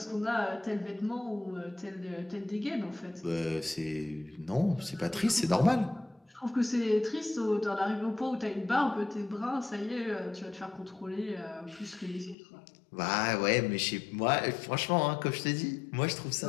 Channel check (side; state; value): right; drops out; at 12.4 s